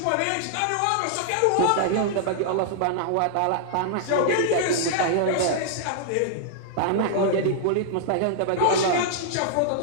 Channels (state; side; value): different; both; correlation -0.01